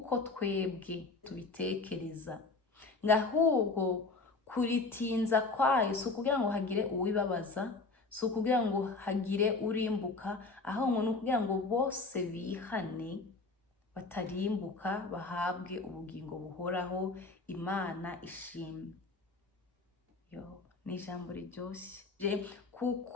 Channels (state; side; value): quieter; right; 3.7 dB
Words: twebwe tubitekereza, ahubwo kuritinza kwayo si ukugira ngo hagire uwibabaza, si ukugira ngo hagire urimbuka, ahubwo ni ukugira ngo bose bihane batarimbuka, bahabwe ubugingo buhoraho. Imana ishimwe. Ni ijambo riryoshye,